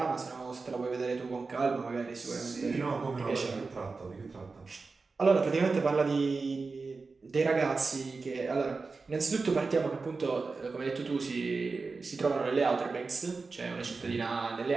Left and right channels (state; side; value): quieter; left; 4.2 dB